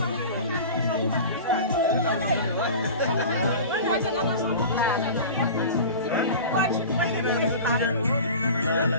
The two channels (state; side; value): inverted; both; correlation -0.35